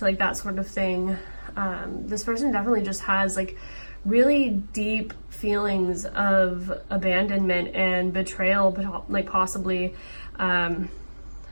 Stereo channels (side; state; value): both; inverted; correlation -1.00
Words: like that sort of thing. This person definitely just has like really deep feelings of abandonment and betrayal, like possibly. I